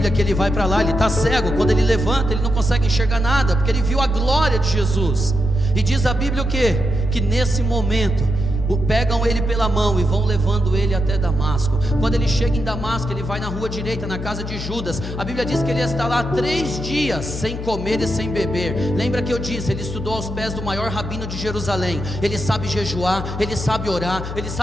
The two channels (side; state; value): left; noise; hum, 7 dB below the sound